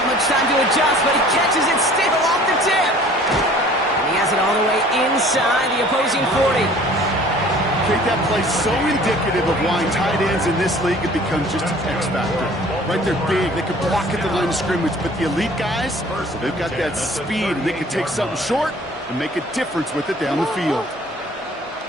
much time to adjust, but he catches it still off the tip. And he has it all the way inside the opposing 40. Kate, that play so indicative of why tight ends in this league have become just an X factor. Right, they're big, they can block at the line of scrimmage, but the elite guys, they've got that speed, and they can take something short and make a difference with it down the field.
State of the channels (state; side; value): normal; both; correlation 0.50